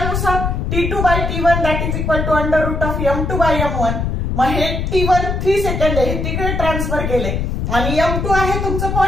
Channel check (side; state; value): left; noise; rumble, 1 dB below the sound